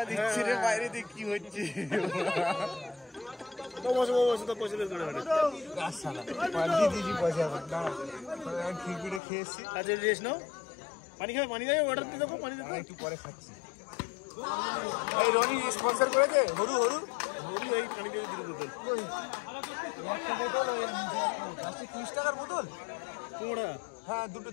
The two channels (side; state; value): right; drops out; at 9.2 s